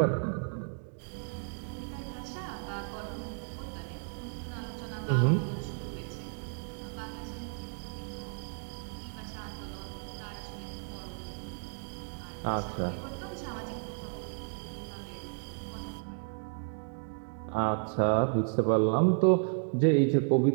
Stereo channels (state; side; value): silent; left; 56 dB below the other